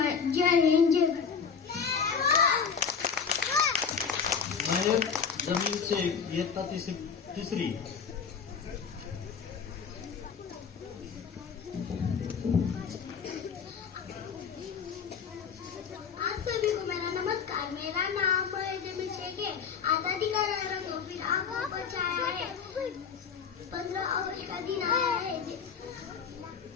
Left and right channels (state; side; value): quieter; right; 6.4 dB